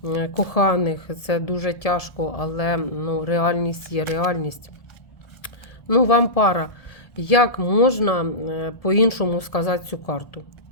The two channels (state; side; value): late; right; 1.7 ms